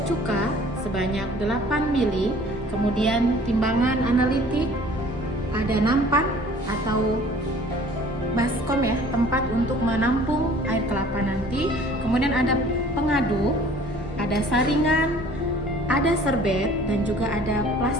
cuka sebanyak 8 ml, kemudian timbangan analitik, ada nampan atau baskom ya, tempat untuk menampung air kelapa nanti, kemudian ada pengaduk, ada saringan, ada serbet, dan juga ada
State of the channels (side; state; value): both; normal; correlation 0.51